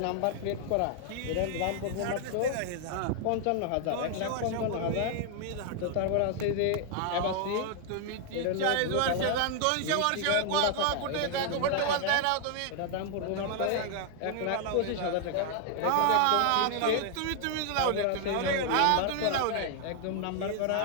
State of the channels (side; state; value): both; different; correlation 0.00